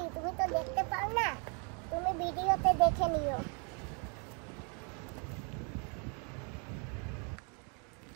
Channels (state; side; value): quieter; left; 36.3 dB